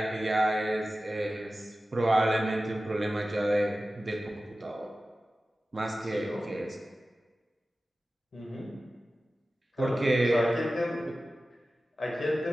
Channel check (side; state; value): both; normal; correlation 0.95